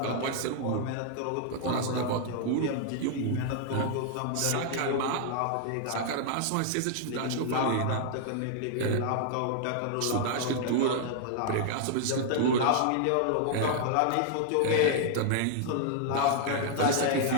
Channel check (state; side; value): different; both; correlation -0.01